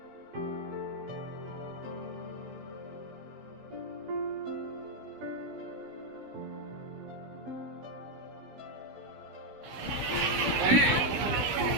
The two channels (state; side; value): late; left; 16 ms